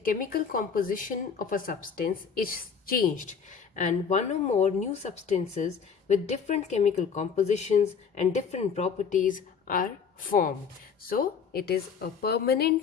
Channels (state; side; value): quieter; right; 6.4 dB